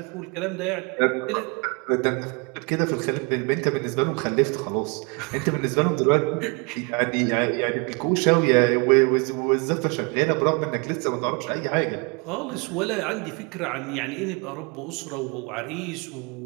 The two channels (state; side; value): quieter; left; 31.0 dB